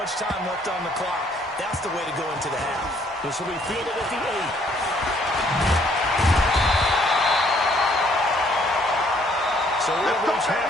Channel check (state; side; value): normal; both; correlation 0.64